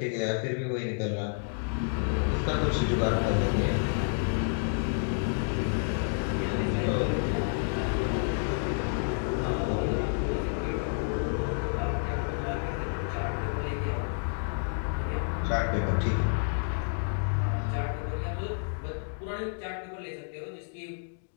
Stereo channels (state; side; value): silent; right; digital silence